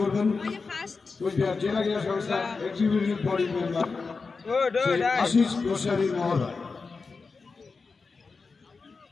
কুচবিহার জেলা ক্রীড়া সংস্থা executive body member Ashis Goswami মহোদয়।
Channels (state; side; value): quieter; right; 4.5 dB